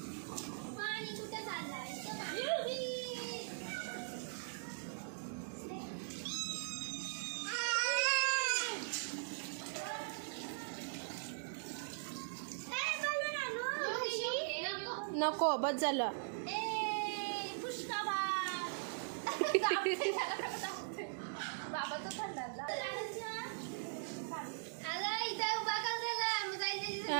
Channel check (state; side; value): silent; left; digital silence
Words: नको बस झालं. बाबा तो थंड